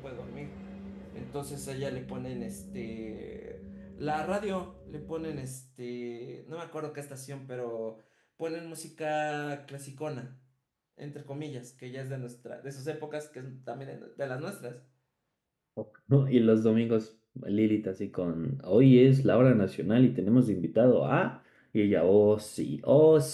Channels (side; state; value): both; identical; correlation 1.00